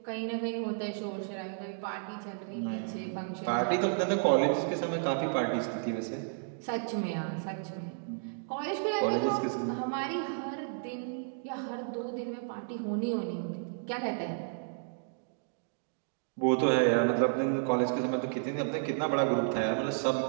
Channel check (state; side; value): silent; left; digital silence